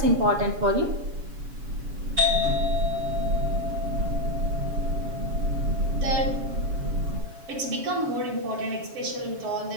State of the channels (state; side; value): late; left; 7.1 ms